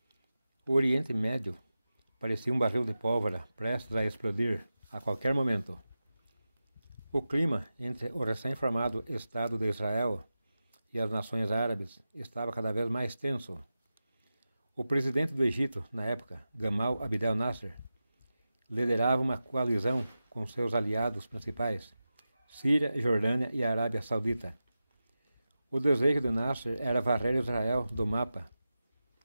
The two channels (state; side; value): inverted; both; correlation -0.93